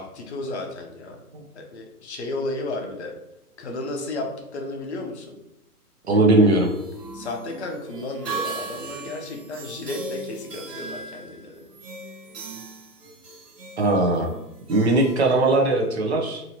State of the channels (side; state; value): both; normal; correlation 0.24